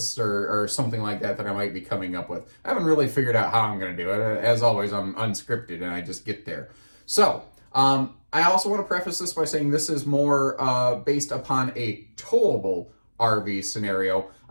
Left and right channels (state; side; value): inverted; both; correlation -1.00